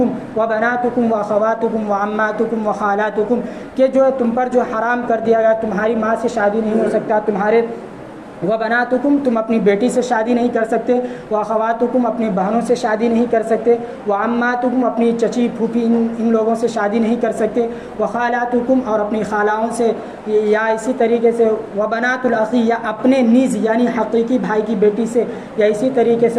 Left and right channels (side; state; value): both; identical; correlation 1.00